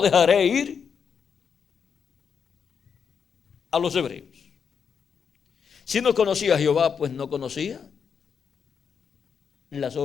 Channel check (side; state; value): right; quieter; 6.7 dB